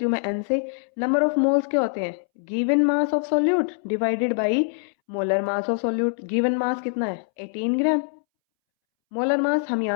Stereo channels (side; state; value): right; silent; 63 dB below the other